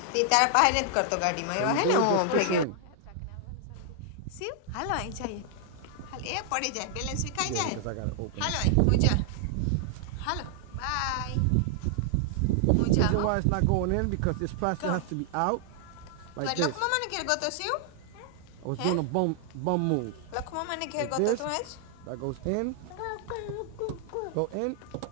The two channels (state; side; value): different; both; correlation 0.00